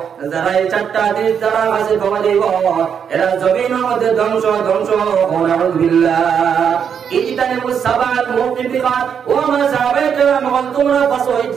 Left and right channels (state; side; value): quieter; left; 7.5 dB